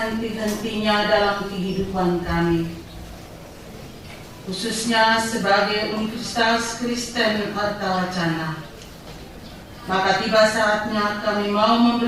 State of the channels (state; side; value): identical; both; correlation 1.00